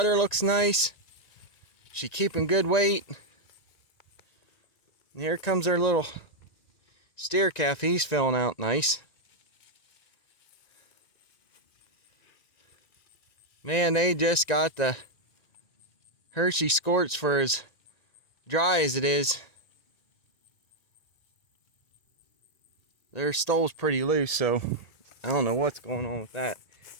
looks nice. She's keeping good weight. And here comes our little steer calf. He's filling out nice. Man, they just got the Hershey squirts for as dry as it is. Their stool's pretty loose, so I don't know what's going on with that.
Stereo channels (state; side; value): late; right; 1.9 ms